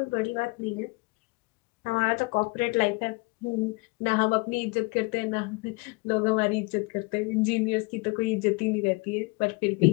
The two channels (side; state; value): right; quieter; 25.5 dB